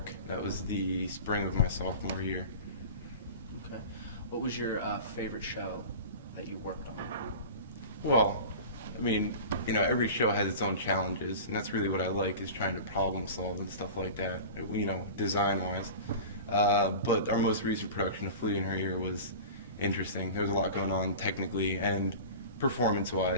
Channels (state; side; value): inverted; both; correlation -0.35